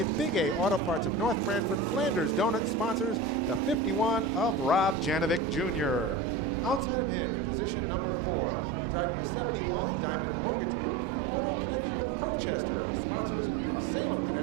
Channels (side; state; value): left; drops out; at 6.9 s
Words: Big A Auto Parts of North Branford, Flanders Donut sponsors the 51 of Rob Janovic Jr. Outside of him, in position number 4, driving the 71, Diamond Mortgage Group, Photo Connection of Colchester, the sponsors of Salem,